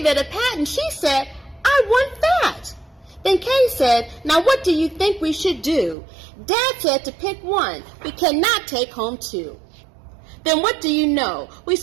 it a pat and she said, I want that. Then Kay said, now what do you think we should do? Dad said to pick one. We cannot take home two. Then what do you know? We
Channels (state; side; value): drops out; left; at 6.0 s